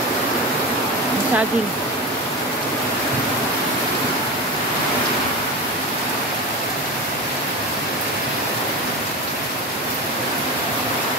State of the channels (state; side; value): normal; both; correlation 0.23